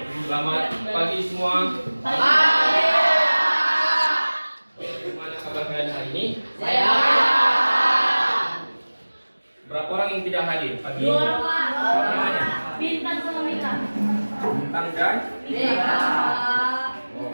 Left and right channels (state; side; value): inverted; both; correlation -1.00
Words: Selamat pagi semua. Pagi. Gimana kabar kalian hari ini? Sehat. Berapa orang yang tidak hadir pagi ini? 2 orang, Pak. Siapa namanya? Bintang sama Mika. Bintang dan? Mika. Oh,